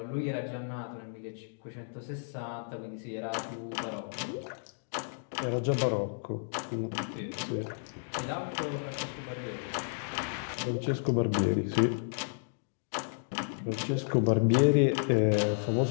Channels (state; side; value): silent; right; digital silence